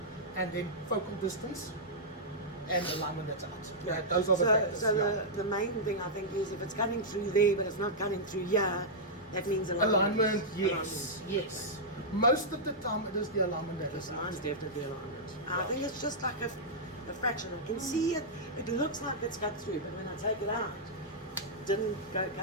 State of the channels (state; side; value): normal; both; correlation -0.10